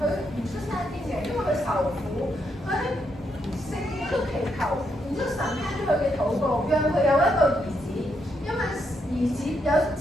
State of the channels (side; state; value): both; normal; correlation 0.78